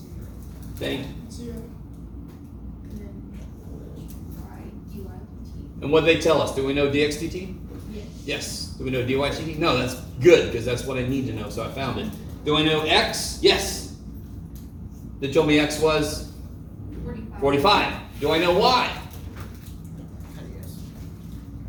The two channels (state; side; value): identical; both; correlation 1.00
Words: Thank you. 0. And then y dy dt. And what did they tell us? Do we know dx dt? Yes. Yes. Do we know dy dt? No, that's good, because that's what I need to know, so I found it. Do I know x? Yes. They told me x was 45. 45. Do I know y?